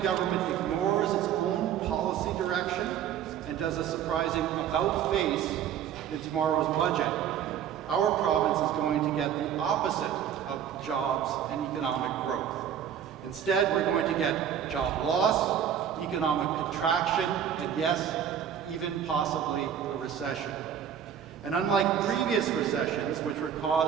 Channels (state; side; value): quieter; left; 9.1 dB